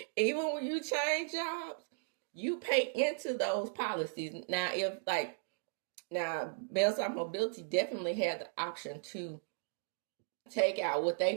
Even when you change jobs, you pay into those policies. Now, Bell South Mobility definitely had the option to take out what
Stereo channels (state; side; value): silent; left; digital silence